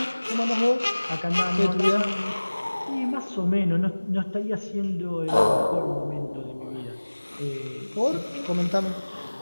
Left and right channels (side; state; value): both; inverted; correlation -1.00